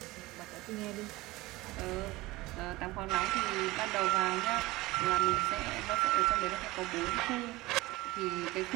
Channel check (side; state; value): left; quieter; 19.9 dB